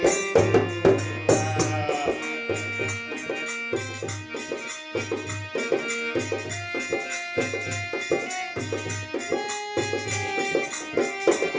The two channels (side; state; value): both; identical; correlation 1.00